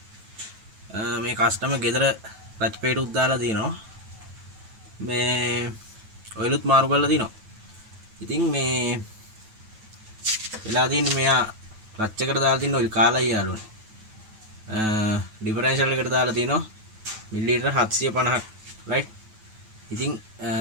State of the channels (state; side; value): late; left; 9.2 ms